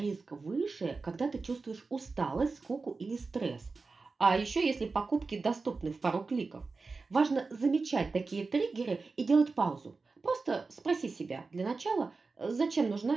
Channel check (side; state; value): left; quieter; 4.1 dB